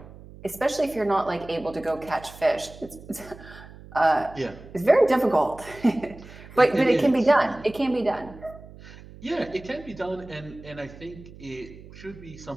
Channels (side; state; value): right; noise; hum, 18 dB below the sound